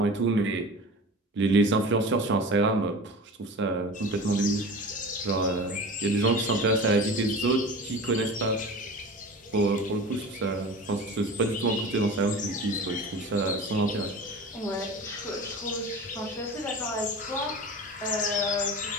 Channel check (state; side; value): normal; both; correlation 0.35